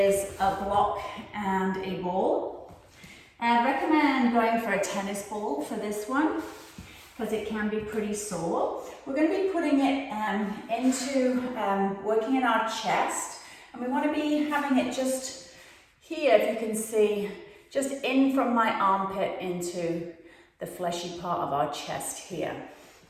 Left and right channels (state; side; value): identical; both; correlation 1.00